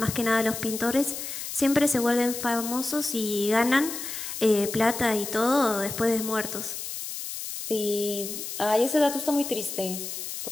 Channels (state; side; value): noise; left; hiss, 7 dB below the sound